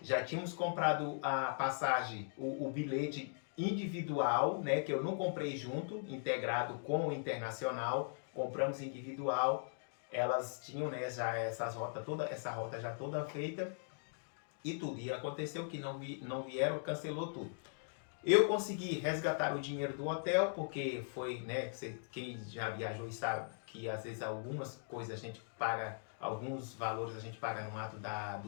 tínhamos comprado a passagem, o bilhete individual, né, que eu não comprei junto, integrado com o internacional, compramos individual. Elas tinham, né, já essa rota já toda feita e tudo. E aconteceu que não vieram, cancelou tudo. Eu consegui resgatar o dinheiro do hotel, porque foi, né, quem já viajou e sabe que que às vezes algumas coisas a gente paga, alguns valores a gente paga no ato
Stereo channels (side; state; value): right; silent; digital silence